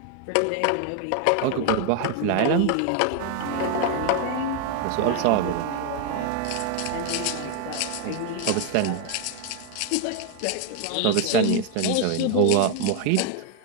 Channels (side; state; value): both; different; correlation 0.01